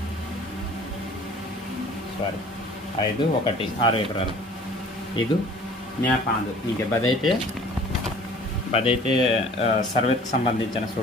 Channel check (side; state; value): both; normal; correlation 0.49